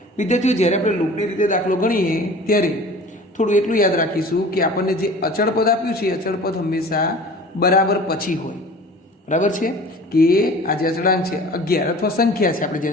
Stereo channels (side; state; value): both; normal; correlation 0.42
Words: વિદ્યાર્થીઓ જ્યારે આપણે લોપની રીતે દાખલો ગણીએ ત્યારે થોડું એટલું યાદ રાખીશું કે આપણને જે અચળ પદ આપ્યું છે અચળ પદ હંમેશા બરાબર પછી હોય બરાબર છે કે આ જે અચળાંક છે 11 અથવા સંખ્યા છે આપણે